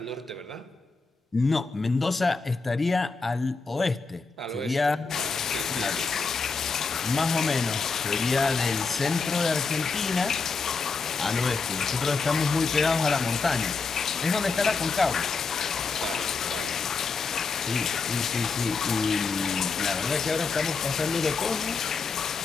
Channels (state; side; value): quieter; right; 4.6 dB